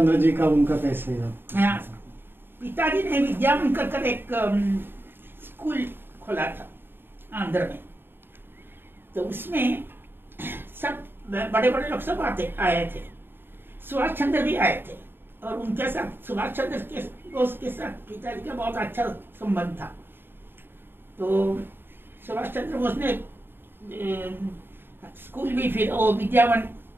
जी का उनका कैसे है? हाँ, पिताजी ने विद्यावन कर एक स्कूल खोला था आंध्र में। तो उसमें सब बड़े बड़े लोग सब आए थे। सुभाष चंद्र भी आए थे, और उनके साथ सुभाष चंद्र के दोस्त के साथ पिताजी का बहुत अच्छा संबंध था। तो सुभाष चंद्र बोस ने स्कूल भी, फिर वो विद्यावन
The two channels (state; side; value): late; left; 0.10 ms